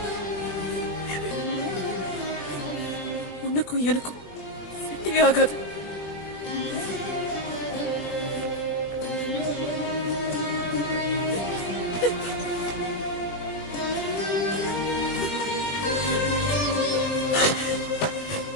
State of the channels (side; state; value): right; late; 20 ms